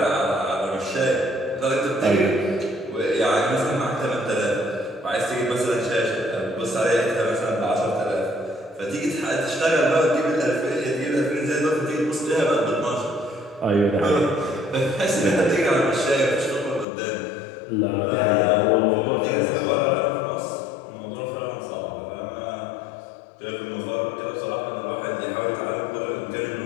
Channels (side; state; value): right; drops out; at 16.9 s